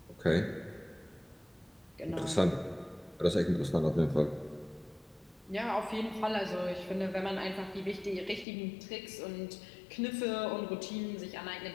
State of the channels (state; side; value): drops out; right; at 8.5 s